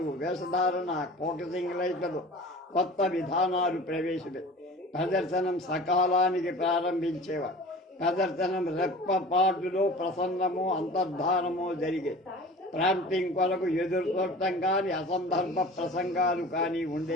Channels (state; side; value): normal; both; correlation 0.40